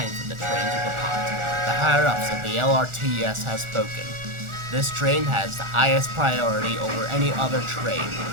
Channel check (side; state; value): left; late; 1.4 ms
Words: for the train to depart. The higher-ups of the LRTS have spoken. This train has the highest priority over any other train.